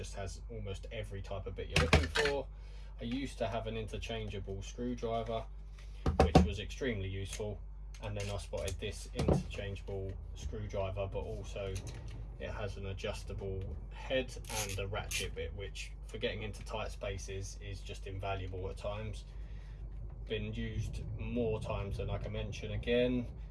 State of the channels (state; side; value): identical; both; correlation 1.00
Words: has almost every type of bit you're looking for. I used to have an interchangeable screwdriver, which was extremely useful, and then I spotted this interchangeable screwdriver, but also it has an adjustable head and a ratchet bit, which for getting into tight spaces is just invaluable at times. Been used more times than I can mention. Again,